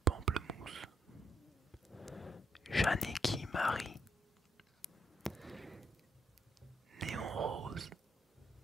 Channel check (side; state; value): both; normal; correlation 0.75